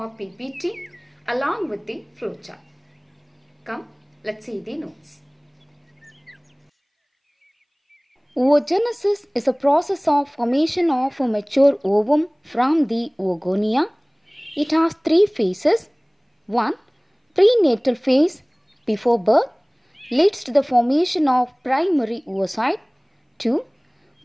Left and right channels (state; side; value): identical; both; correlation 1.00